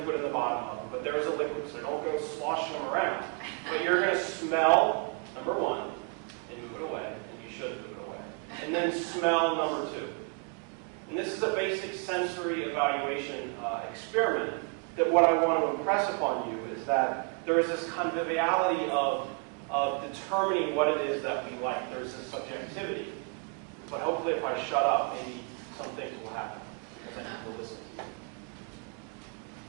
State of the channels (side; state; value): left; quieter; 38.5 dB